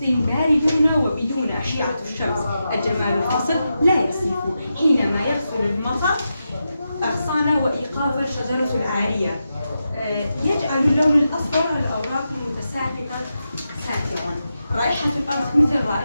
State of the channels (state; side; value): inverted; both; correlation -0.88